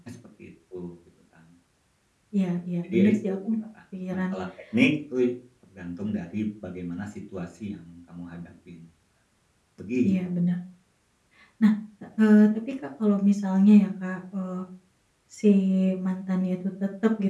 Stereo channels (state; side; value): identical; both; correlation 1.00